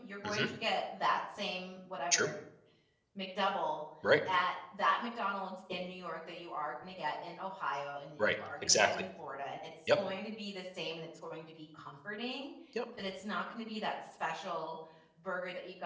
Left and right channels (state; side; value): identical; both; correlation 1.00